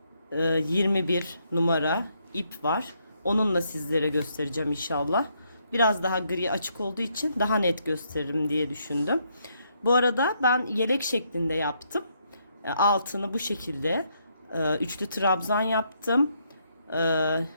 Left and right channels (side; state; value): both; inverted; correlation -0.75